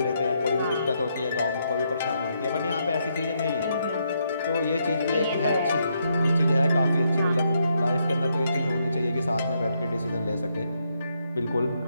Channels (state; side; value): inverted; both; correlation -0.77